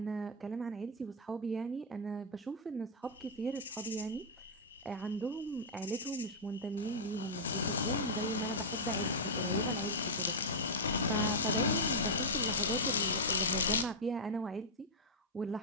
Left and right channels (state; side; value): normal; both; correlation -0.05